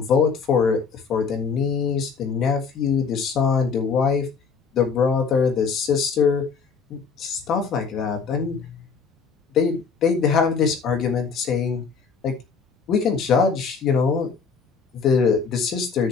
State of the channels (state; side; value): quieter; right; 5.5 dB